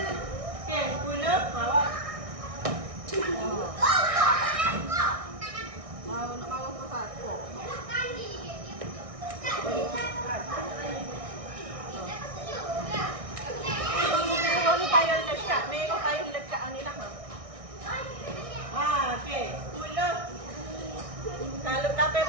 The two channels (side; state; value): left; late; 1.6 ms